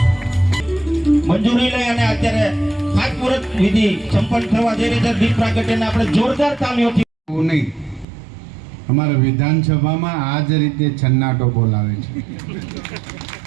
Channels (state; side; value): drops out; left; at 8.1 s